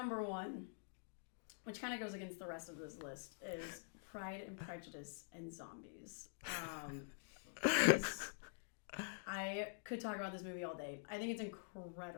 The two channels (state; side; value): silent; right; digital silence